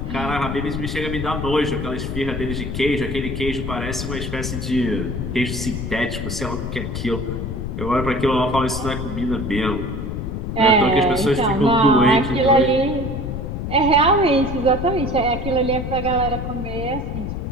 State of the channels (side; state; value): left; noise; rumble, 4 dB below the sound